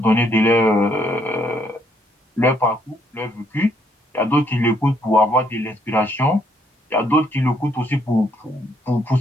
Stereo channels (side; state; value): both; normal; correlation 0.70